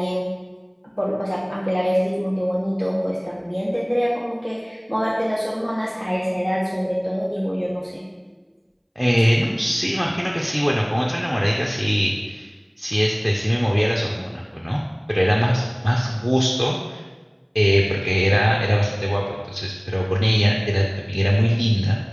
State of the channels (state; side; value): identical; both; correlation 1.00